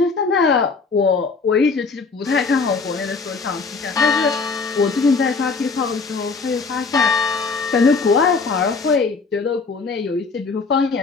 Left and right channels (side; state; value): right; quieter; 4.5 dB